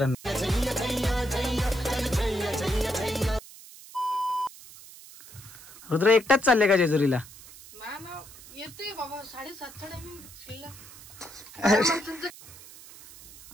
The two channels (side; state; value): right; noise; hiss, 18 dB below the sound